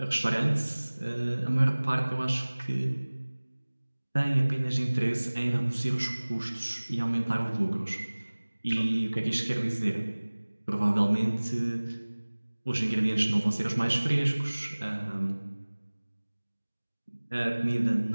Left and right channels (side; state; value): both; inverted; correlation -1.00